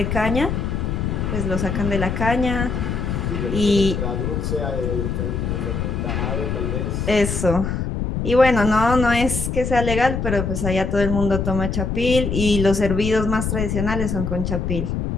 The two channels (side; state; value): left; noise; rumble, 2 dB below the sound